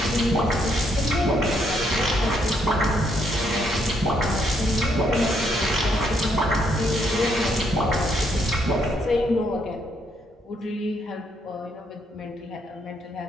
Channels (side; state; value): both; normal; correlation 0.73